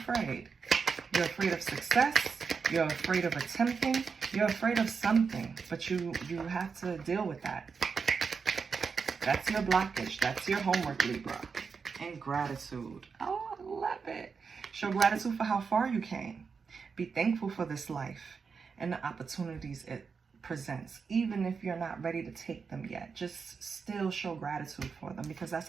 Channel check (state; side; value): quieter; left; 5.5 dB